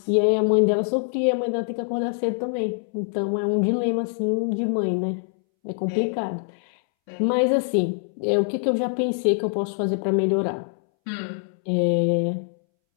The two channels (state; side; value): silent; right; 63 dB below the other